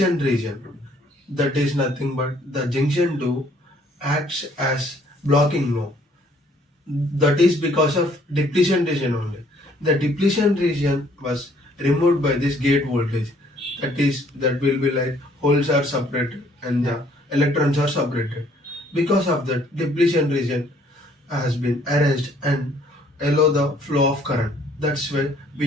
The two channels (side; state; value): both; normal; correlation 0.62